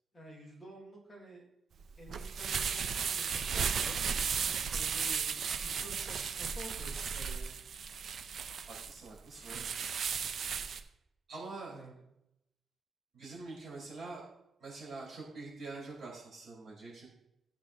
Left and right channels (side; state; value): left; quieter; 5.8 dB